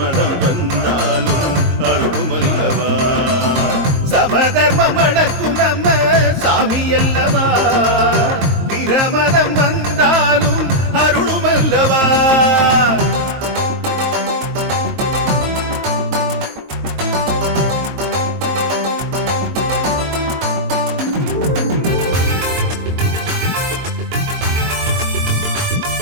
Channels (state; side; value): late; left; 22 ms